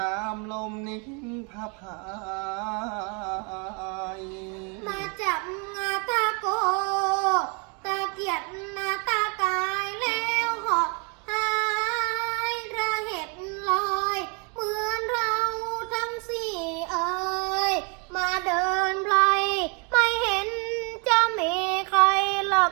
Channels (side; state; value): left; quieter; 34.6 dB